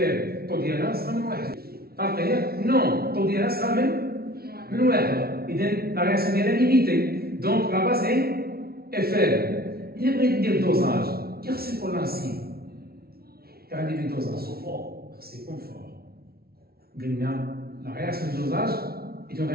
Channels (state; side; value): late; left; 0.44 ms